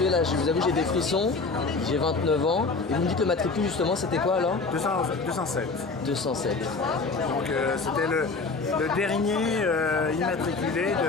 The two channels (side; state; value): right; quieter; 4.1 dB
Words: là je vous avoue j'ai des frissons, j'ai 29 ans, et vous me dites le matricule justement c'était quoi alors? 207. 207. Donc c'était le dernier immatriculé